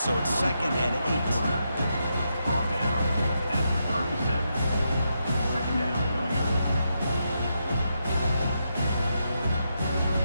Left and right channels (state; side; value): inverted; both; correlation -0.83